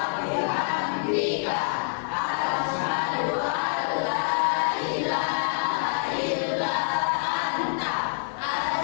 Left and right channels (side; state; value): right; silent; 59 dB below the other